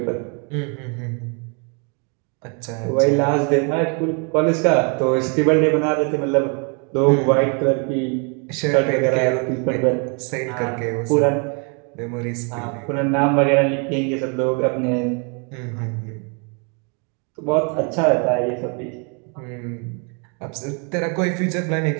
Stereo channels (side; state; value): left; quieter; 36.2 dB